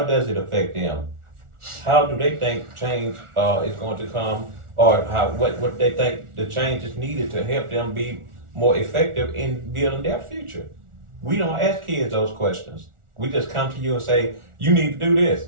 does it affect them? How do they think change is going to come, or what they think the change is needed to help them be more effective in building their future? We don't ask kids those questions. We just come to you and say, you need to do this,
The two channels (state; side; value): late; left; 1.4 ms